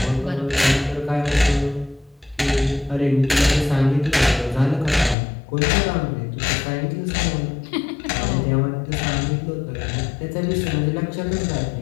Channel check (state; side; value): drops out; right; at 5.2 s